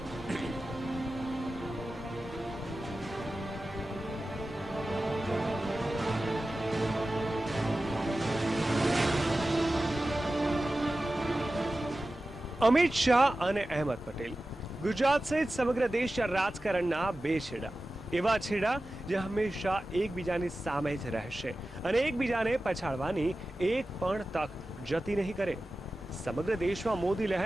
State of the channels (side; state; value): both; normal; correlation 0.95